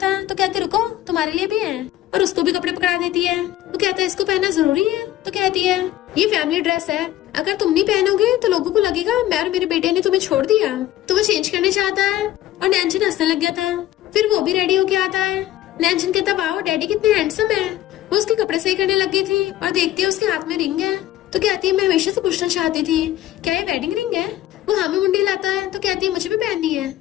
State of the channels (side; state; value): right; quieter; 14.1 dB